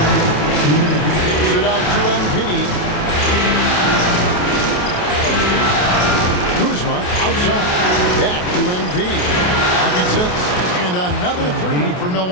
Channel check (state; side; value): late; right; 28 ms